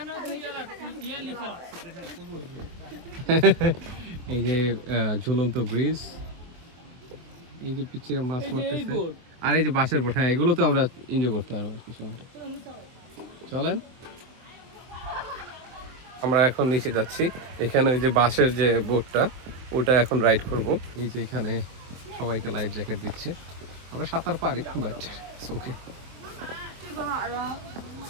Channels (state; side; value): late; left; 24 ms